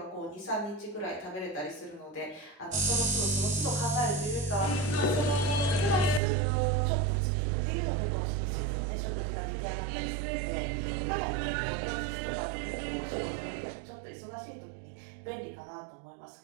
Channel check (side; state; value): left; drops out; at 6.2 s